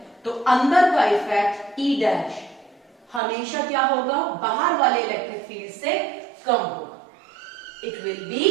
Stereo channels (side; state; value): left; drops out; at 3.2 s